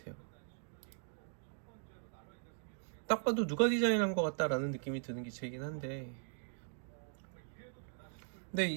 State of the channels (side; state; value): left; silent; digital silence